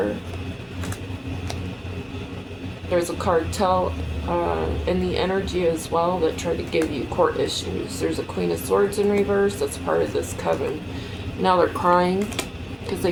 There's a cartel in the energy as well that tried to give you court issues. There's a Queen of Swords in reverse that's part of this coven. Now they're crying because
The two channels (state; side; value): identical; both; correlation 1.00